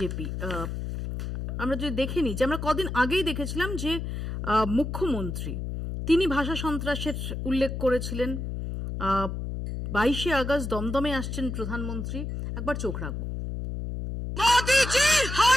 আমরা যদি দেখে নিই যে আমরা কদিন আগেই দেখেছিলাম যে মুখ্যমন্ত্রী তিনি ভাষা সন্ত্রাসের উল্লেখ করেছিলেন। 22শে আগস্ট দমদমে আসছেন প্রধানমন্ত্রী, একবার চোখ রাখবো। মোদিজি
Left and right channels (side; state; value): left; noise; hum, 5 dB below the sound